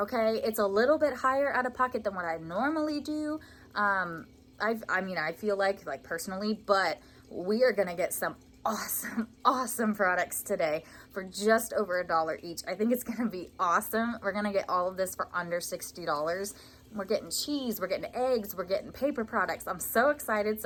It's a little bit higher out of pocket than what I normally do. I feel like personally, but we are gonna get some awesome products today for just over $1 each. I think it's gonna be awesome. We're gonna get all of this for under $60. We're getting cheese, we're getting eggs, we're getting paper products. I'm so excited,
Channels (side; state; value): both; identical; correlation 1.00